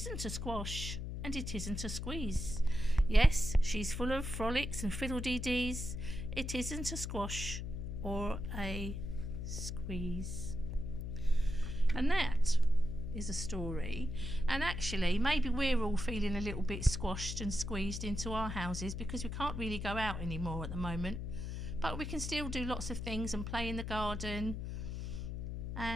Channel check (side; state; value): left; noise; hum, 5 dB below the sound